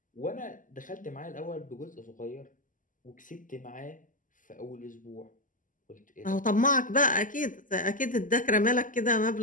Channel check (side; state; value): right; late; 0.38 ms